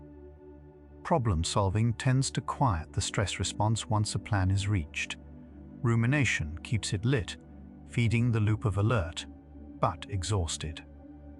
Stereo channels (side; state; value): both; identical; correlation 1.00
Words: Problem solving tends to quiet the stress response once a plan is reached. Rumination keeps it lit, feeding the loop of alert, but exhausted.